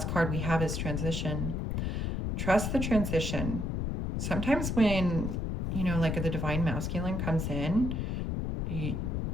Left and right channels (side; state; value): left; noise; rumble, 1 dB below the sound